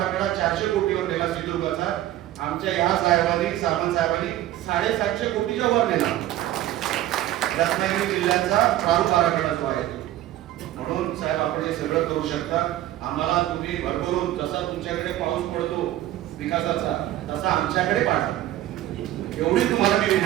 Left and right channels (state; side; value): quieter; left; 14.0 dB